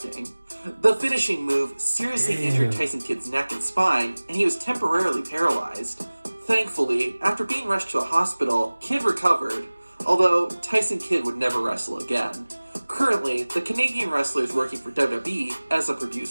The finishing move seriously injured Tyson Kidd's neck and spine, and he was temporarily paralyzed. Thankfully, after being rushed to a hospital, Kidd recovered, although Tyson Kidd would never wrestle again. Currently, the Canadian wrestler is working for WWE as a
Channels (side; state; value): both; inverted; correlation -1.00